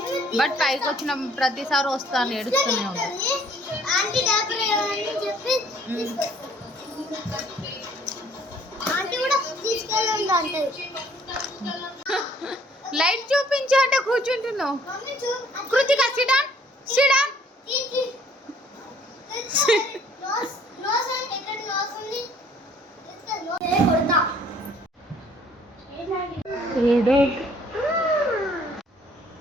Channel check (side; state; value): both; normal; correlation 0.59